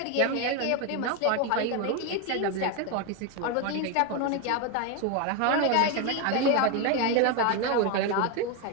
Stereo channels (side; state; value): both; different; correlation 0.02